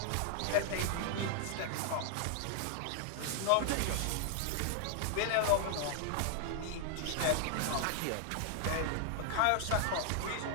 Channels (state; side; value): different; both; correlation 0.00